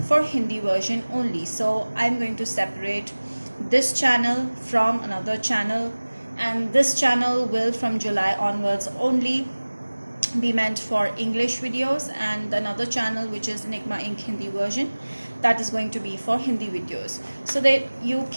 for Hindi version only, so I'm going to separate this channel from another channel, and this channel will from July onwards only be meant for English videos, and another channel which is Enigma Inc. Hindi version, that is going to be for Hindi videos, so that you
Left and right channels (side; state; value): both; inverted; correlation -1.00